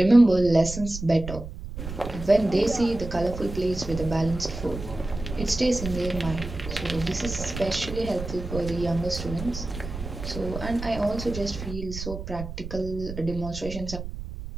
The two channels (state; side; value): noise; right; rumble, 9 dB below the sound